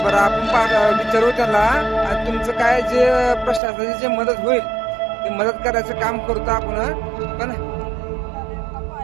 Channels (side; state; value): left; drops out; at 3.6 s